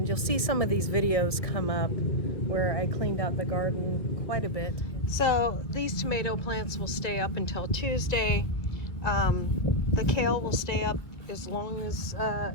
you'll see some of these videos come up where I cleaned out the garden quite a bit. So these tomato plants will stay up until Tuesday. The kale will stay up as long as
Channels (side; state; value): right; late; 1.9 ms